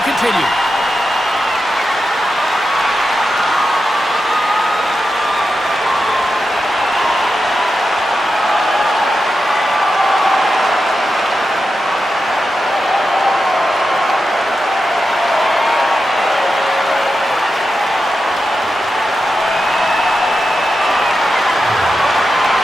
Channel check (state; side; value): normal; both; correlation 0.89